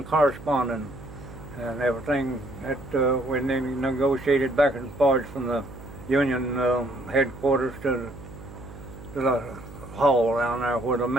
correspondence and everything that we negotiated back and forth from the union headquarters to the hall down there where the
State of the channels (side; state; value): right; noise; hum, 15 dB below the sound